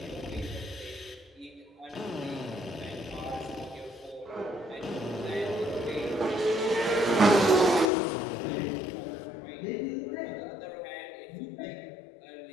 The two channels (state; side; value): drops out; right; at 7.9 s